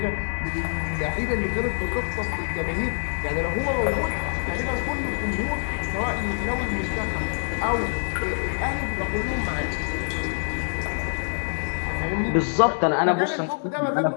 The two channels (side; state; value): right; silent; 61 dB below the other